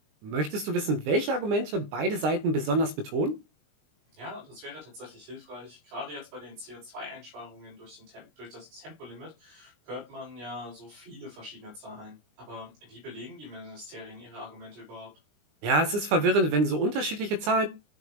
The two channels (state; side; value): late; left; 20 ms